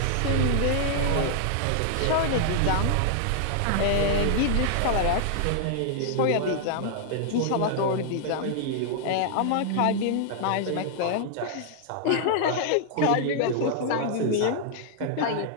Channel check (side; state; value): both; different; correlation -0.01